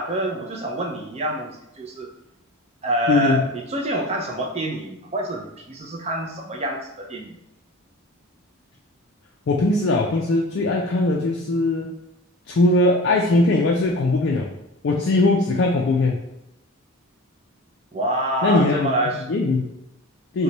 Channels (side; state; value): both; normal; correlation 0.36